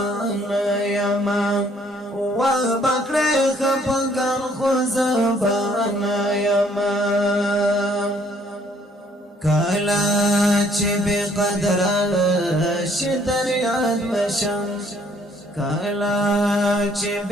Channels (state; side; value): normal; both; correlation 0.63